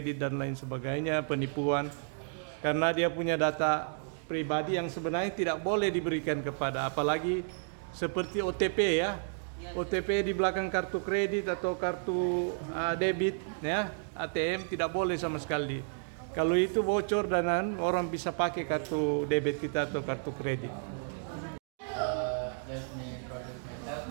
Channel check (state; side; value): silent; left; digital silence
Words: dan lain sebagainya, penipuan. Karena dia punya data pribadi yang sebenarnya tidak boleh diberikan kepada, apalagi seperti OTP ya. OTP di belakang kartu kredit atau kartu debit ya, ATM tidak boleh sama sekali. Kalau itu bocor dan orang bisa pakai kartu debit kita atau kartu kredit. Let me introduce myself.